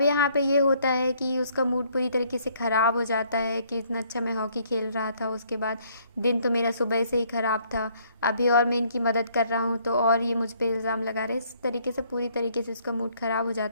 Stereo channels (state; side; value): inverted; both; correlation -0.65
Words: यहाँ पे ये होता है कि उसका मूड पूरी तरीके से ख़राब हो जाता है कि इतना अच्छा मैं हॉकी खेल रहा था, उसके बाद दिन तो मेरा सुबह से ही ख़राब था, अभी और मैं इनकी मदद कर रहा हूँ तो और ये मुझ पे इल्ज़ाम लगा रहे हैं। इस तरीके से पूरी तरीके से उसका मूड ख़राब हो